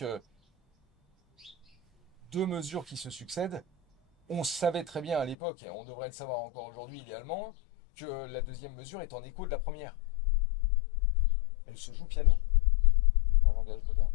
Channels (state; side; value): drops out; right; at 5.4 s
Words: deux mesures qui se succèdent. On savait très bien à l'époque, et on devrait le savoir encore aujourd'hui idéalement, que la deuxième mesure est en écho de la première. Elle se joue piano, en langage moderne.